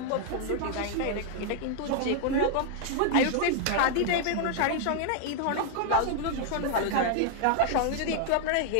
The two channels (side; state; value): both; different; correlation 0.00